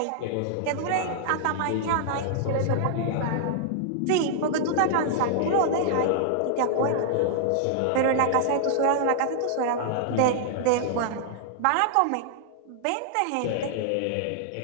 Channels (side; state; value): both; different; correlation -0.01